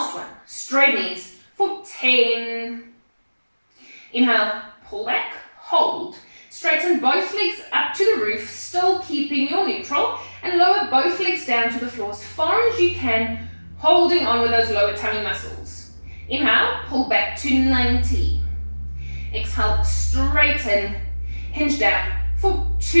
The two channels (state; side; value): inverted; both; correlation -1.00